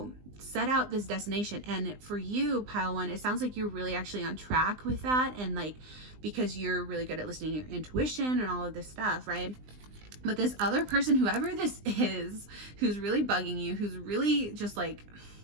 set out this destination. And for you, pile 1, it sounds like you're really actually on track with that. And like, because you're really good at listening to your intuition and all of this stuff, right? But this other person, whoever this is, who's really bugging you, who's really just like,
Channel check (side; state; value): left; late; 20 ms